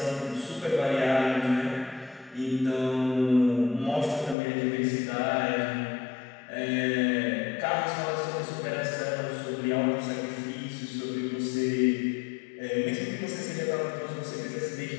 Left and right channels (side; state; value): right; drops out; at 4.4 s